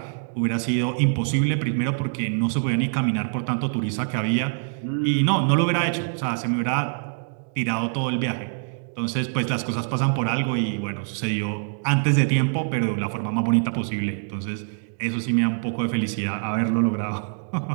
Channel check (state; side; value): silent; left; 61 dB below the other